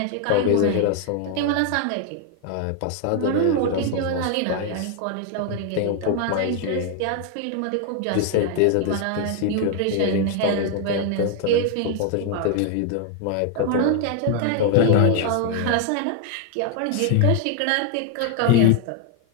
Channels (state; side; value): different; both; correlation 0.00